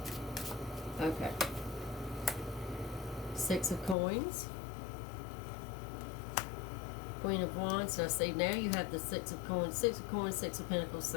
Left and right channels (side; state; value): right; drops out; at 4.0 s